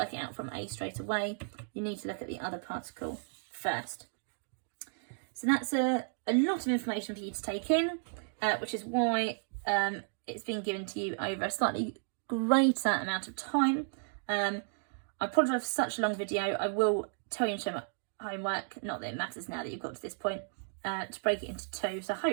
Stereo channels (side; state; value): left; silent; digital silence